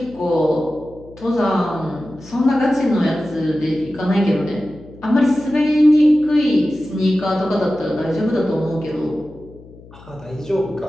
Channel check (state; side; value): noise; left; hum, 21 dB below the sound